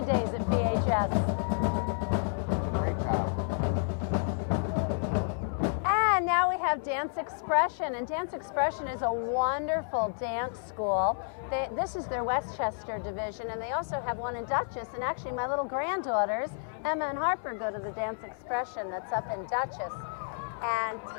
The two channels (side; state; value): right; silent; digital silence